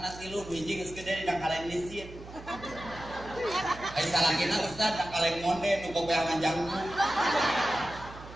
3 hiji geus gede dina kaleng lisin. Ai salakina Ustaz da kaleng monde nu boga manjangku.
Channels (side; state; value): right; noise; hum, 15 dB below the sound